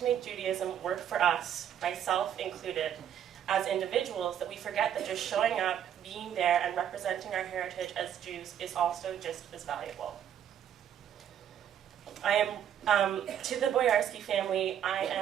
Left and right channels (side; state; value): left; quieter; 9.8 dB